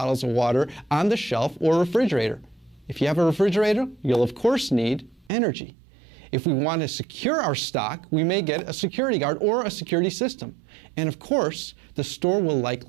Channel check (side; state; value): left; drops out; at 5.3 s